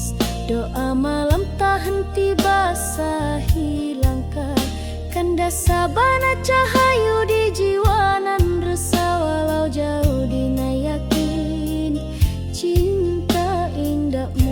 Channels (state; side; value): identical; both; correlation 1.00